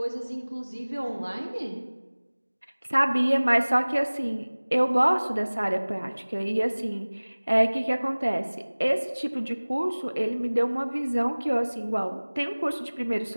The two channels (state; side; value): inverted; both; correlation -1.00